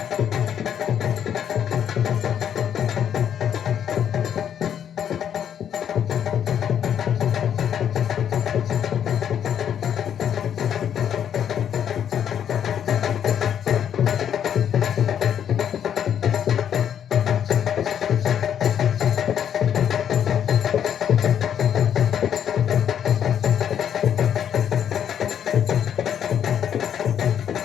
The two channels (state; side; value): quieter; right; 9.2 dB